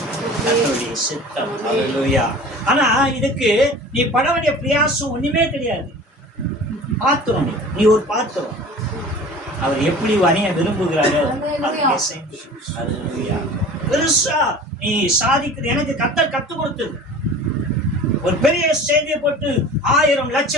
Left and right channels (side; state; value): both; normal; correlation 0.41